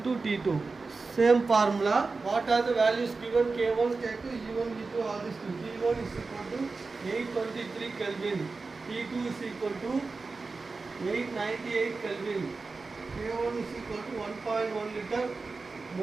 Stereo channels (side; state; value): left; quieter; 4.0 dB